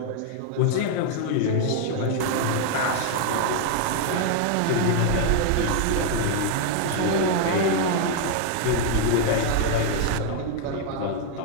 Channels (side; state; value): both; different; correlation 0.00